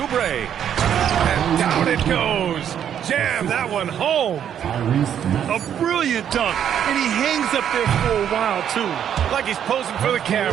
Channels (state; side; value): quieter; left; 9.3 dB